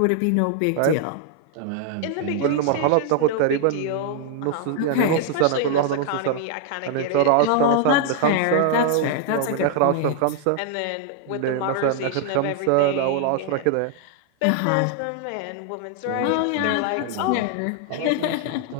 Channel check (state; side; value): different; both; correlation 0.00